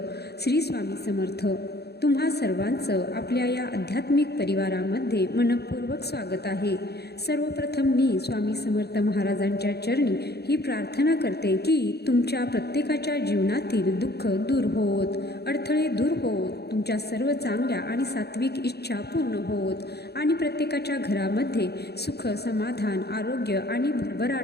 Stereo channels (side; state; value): right; late; 0.47 ms